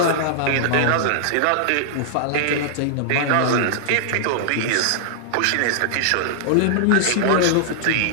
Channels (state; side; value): different; both; correlation -0.01